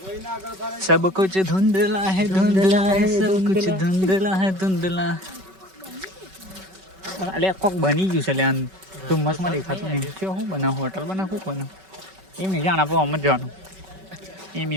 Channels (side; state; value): left; late; 5.3 ms